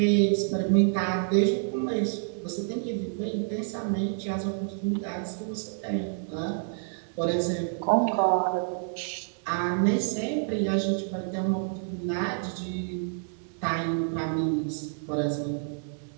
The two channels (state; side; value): silent; left; digital silence